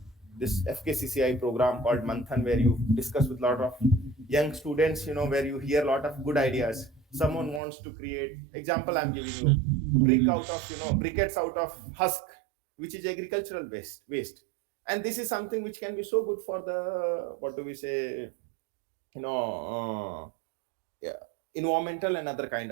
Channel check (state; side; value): drops out; left; at 7.6 s